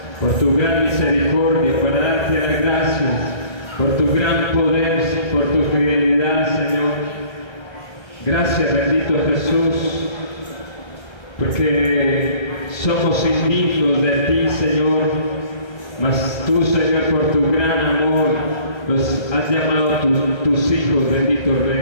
por tu gran misericordia, para darte las gracias por tu gran poder, por tu fidelidad, Señor. Gracias, bendito Jesús, porque somos indignos de ti, Señor, mas tú, Señor, por tu gran amor, nos has llamado tus hijos, bendito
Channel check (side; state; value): right; late; 1.3 ms